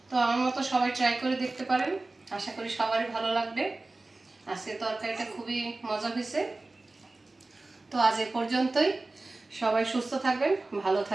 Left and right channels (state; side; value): quieter; left; 3.1 dB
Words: তো আমার মতো সবাই ট্রাই করে দেখতে পারেন, আশা করি সবারই ভালো লাগবে। আজকে তরকারিটা খুবই মজা হয়েছে। তো আজ এ পর্যন্তই, সবাই সুস্থ থাকবেন, ভালো